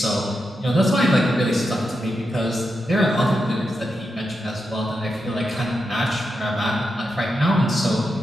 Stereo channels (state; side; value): normal; both; correlation 0.86